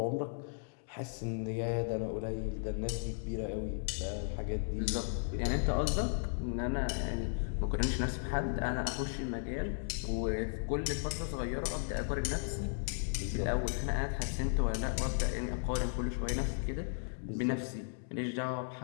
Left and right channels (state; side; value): silent; right; digital silence